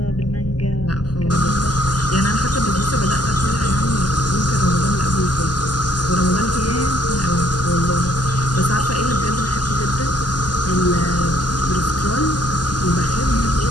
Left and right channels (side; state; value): right; late; 0.70 ms